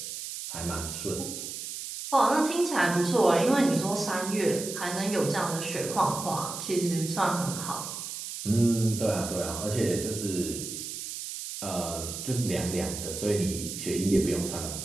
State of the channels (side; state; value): right; noise; hiss, 7 dB below the sound